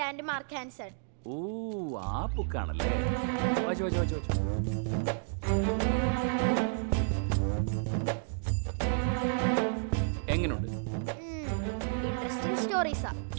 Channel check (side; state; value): left; silent; digital silence